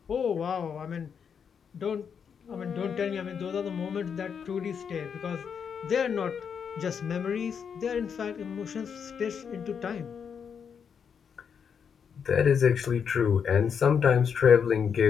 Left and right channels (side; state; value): right; quieter; 7.0 dB